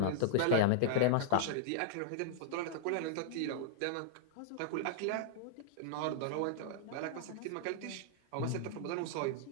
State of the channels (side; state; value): both; different; correlation -0.01